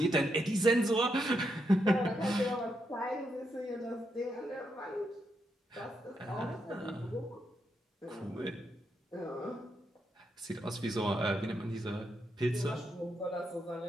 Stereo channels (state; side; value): normal; both; correlation 0.82